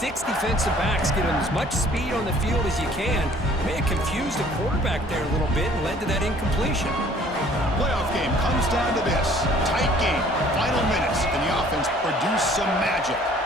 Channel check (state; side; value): normal; both; correlation 0.56